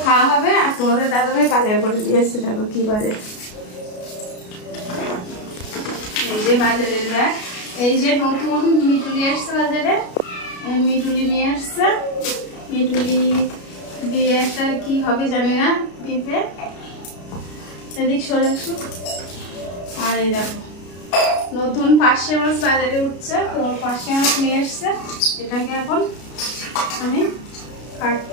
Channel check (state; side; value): late; right; 33 ms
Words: খাওয়া হবে। আর তোমাদের দাদাভাই বাজার করে দিয়ে এসছে, দেখো কি বাজার। এই যে বাজারের ব্যাগ, এই যে নতুন মিটুলি এসছে বাজারে, মিটুলি নিয়ে এসছে। মিটুলি দিয়ে একটা কি হবে জানি না, পিঁপে। এদিক সরে আসো। আর এই দেখো নতুন পার্শে মাছ বাজারে উঠছে, তো পার্শে মাছ নিয়ে এসছে। এটাকে এখন আমি